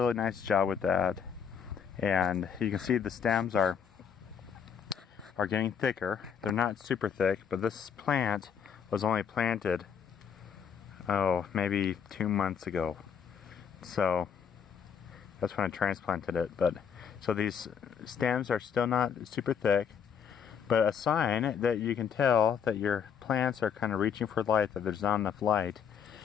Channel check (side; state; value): right; quieter; 7.4 dB